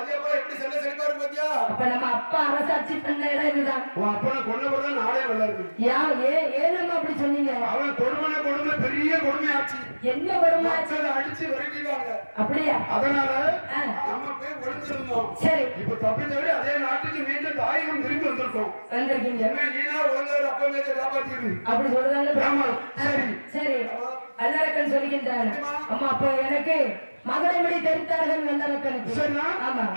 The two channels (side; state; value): both; inverted; correlation -1.00